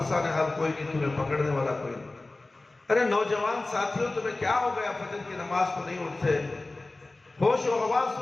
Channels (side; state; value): right; quieter; 3.1 dB